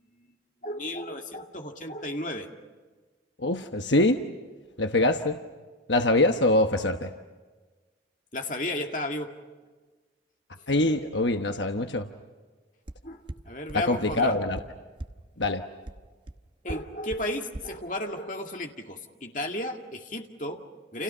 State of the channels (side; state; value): both; normal; correlation 0.07